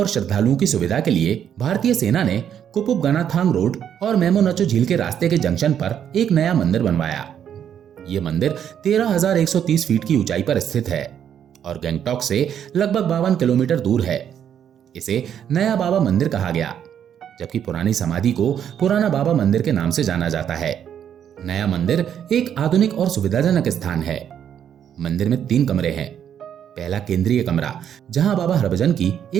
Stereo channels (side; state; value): left; quieter; 9.1 dB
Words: श्रद्धालुओं की सुविधा के लिए भारतीय सेना ने कुपुप गनाथांग रोड और मेमो नचो झील के रास्ते के जंक्शन पर एक नया मंदिर बनवाया। यह मंदिर 13,130 फीट की ऊंचाई पर स्थित है और गंगटोक से लगभग 52 किलोमीटर दूर है। इसे नया बाबा मंदिर कहा गया, जबकि पुरानी समाधि को पुराना बाबा मंदिर के नाम से जाना जाता है। नया मंदिर एक आधुनिक और सुविधाजनक स्थान है। मंदिर में 3 कमरे हैं। पहला केंद्रीय कमरा, जहां बाबा हरभजन की